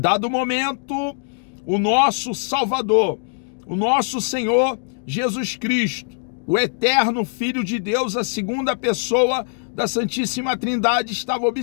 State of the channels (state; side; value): silent; right; 64 dB below the other